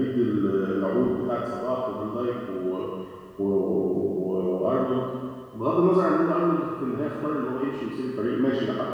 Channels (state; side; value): identical; both; correlation 1.00